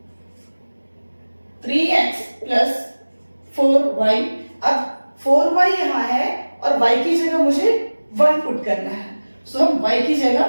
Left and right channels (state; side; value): inverted; both; correlation -1.00